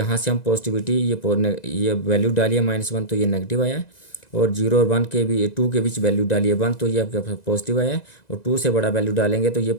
से हम पॉजिटिविटी ये वैल्यू डालिए -1 तो ये नेगेटिव आया है, और 0 और 1 के भी 2 के बीच वैल्यू डालिए 1 तो ये आपके पास पॉजिटिव आया है, और 2 से बड़ा वैल्यू डालेंगे तो ये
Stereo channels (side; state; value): right; late; 1.9 ms